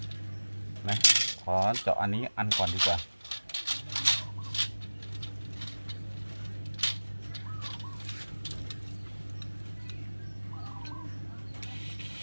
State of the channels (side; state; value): both; inverted; correlation -1.00